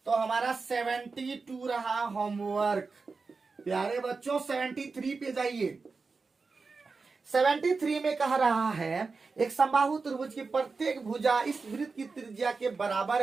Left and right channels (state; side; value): quieter; left; 4.4 dB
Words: तो हमारा 72 रहा होमवर्क। प्यारे बच्चों 73 पे जाइए। 73 में कह रहा है एक समबाहु त्रिभुज की प्रत्येक भुजा इस वृत्त की त्रिज्या के बराबर